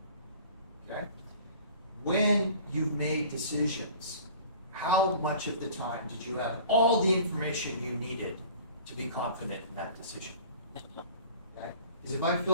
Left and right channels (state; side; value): inverted; both; correlation -0.45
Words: Okay? When you've made decisions, how much of the time did you have all the information you needed to be confident in that decision? Okay? Because if I